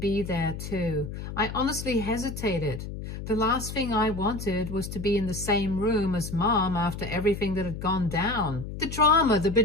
there too. I honestly hesitated. The last thing I wanted was to be in the same room as Mom after everything that had gone down. The drama, the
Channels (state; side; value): noise; left; hum, 8 dB below the sound